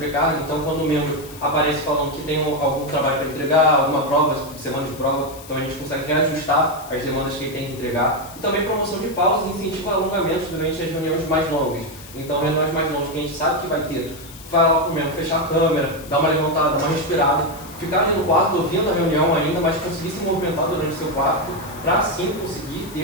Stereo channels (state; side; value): noise; left; hiss, 18 dB below the sound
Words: então quando o membro aparece falando que tem algum trabalho para entregar, alguma prova, semana de prova, então a gente consegue reajustar as demandas que ele tem que entregar. E também promoção de pausas e incentivo a alongamentos durante as reuniões mais longas. Então reuniões mais longas que a gente sabe que vai ter, vai lá para o membro fechar a câmera, dar uma levantada, uma respirada, ficar ali no quarto ouvindo a reunião ainda, mas conseguir se movimentar durante o seu quarto, para assim conseguir